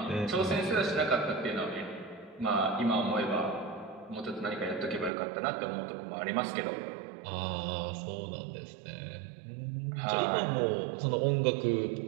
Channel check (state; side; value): drops out; left; at 5.1 s